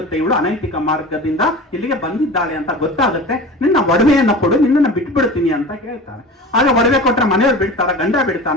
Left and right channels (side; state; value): both; normal; correlation 0.35